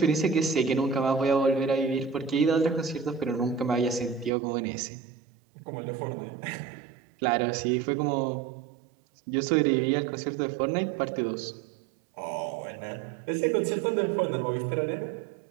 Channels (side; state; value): left; drops out; at 4.3 s